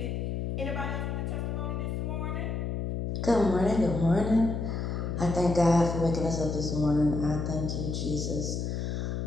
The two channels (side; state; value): left; noise; hum, 2 dB below the sound